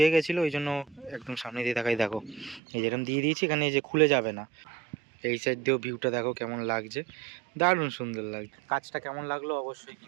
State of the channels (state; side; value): drops out; left; at 2.6 s